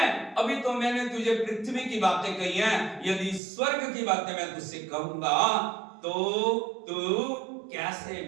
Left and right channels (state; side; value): drops out; left; at 3.4 s